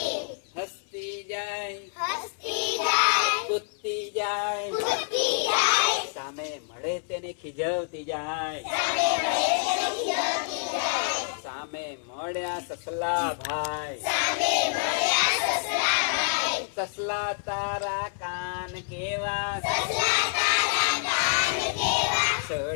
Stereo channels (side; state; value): right; silent; 60 dB below the other